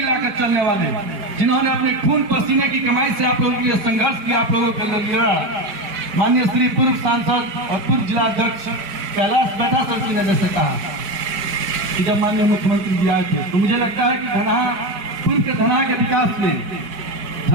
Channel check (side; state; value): left; late; 5.0 ms